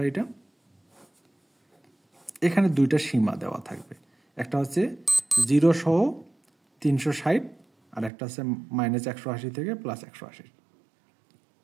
এটা এখানে দুইটা সীমা দেওয়া থাকবে, একটা হচ্ছে 0 সহ 360, আর একটা হচ্ছে -180 থেকে +180।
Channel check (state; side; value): drops out; left; at 8.1 s